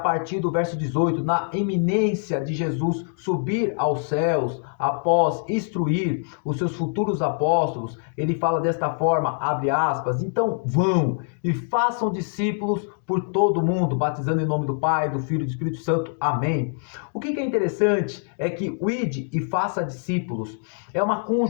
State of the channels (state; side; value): silent; right; 62 dB below the other